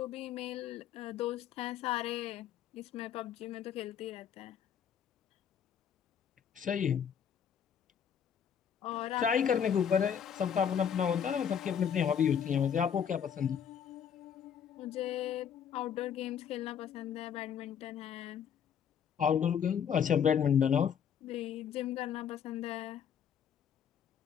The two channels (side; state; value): right; quieter; 8.2 dB